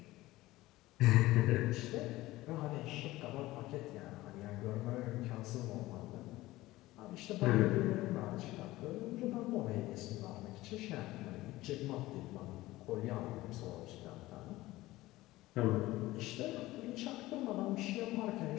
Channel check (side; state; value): right; quieter; 17.9 dB